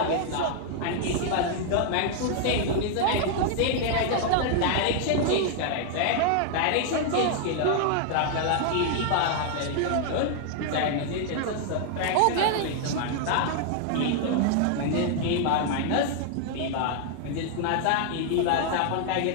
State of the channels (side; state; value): both; different; correlation 0.00